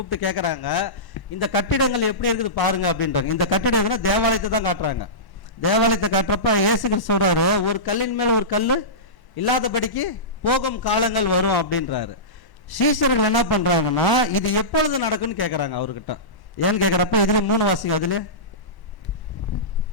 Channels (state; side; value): late; right; 1.0 ms